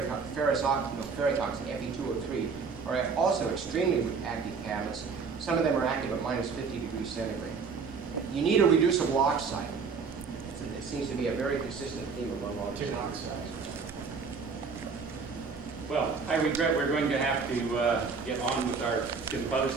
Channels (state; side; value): quieter; left; 5.2 dB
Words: oxide, Fe2O3, are also extremely active catalysts. Some of them are active at minus 50 degrees centigrade. You need a reducible oxide. It seems to be a very consistent theme among all these oxides. Well, I regret we're going to have to get on with our